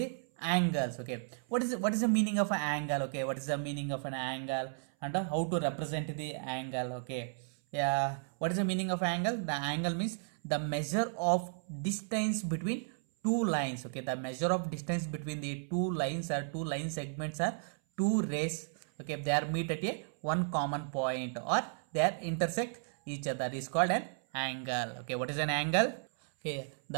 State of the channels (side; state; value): left; silent; 55 dB below the other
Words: angles, okay. What is the meaning of an angle, okay. What is the meaning of an angle and how to represent the angle, okay. Yeah, what is the meaning of angle? The angle means the measure of distance between two lines, okay. The measure of distance between the two lines or two line segments are two rays, okay. They are meet at a one common point or they are intersect each other is called an angle, okay. What is an angle? Okay,